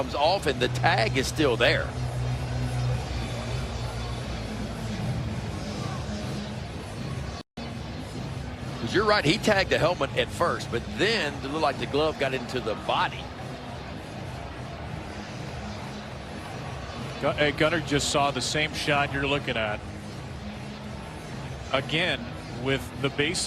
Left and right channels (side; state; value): both; identical; correlation 1.00